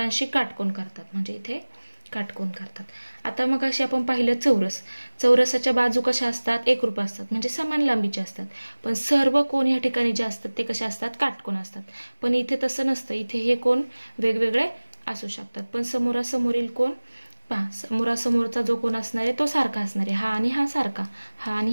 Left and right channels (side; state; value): both; inverted; correlation -1.00